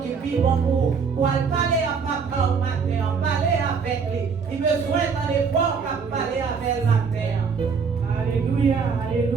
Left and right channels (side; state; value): left; quieter; 5.7 dB